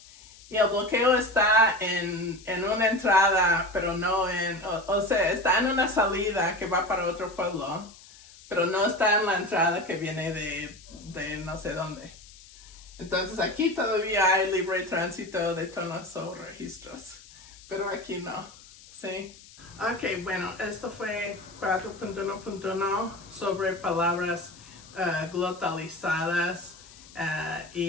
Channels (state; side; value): noise; left; hiss, 21 dB below the sound